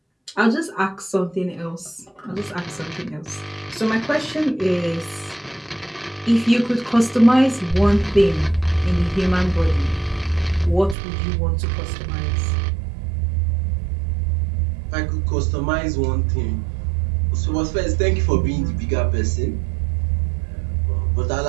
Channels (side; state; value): left; drops out; at 11.0 s